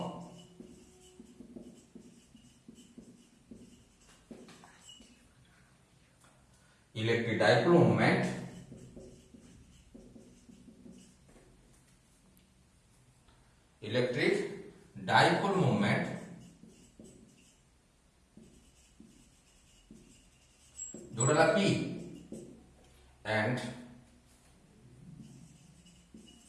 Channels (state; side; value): identical; both; correlation 1.00